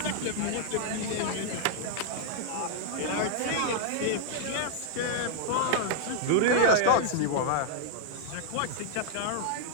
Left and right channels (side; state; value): both; different; correlation -0.01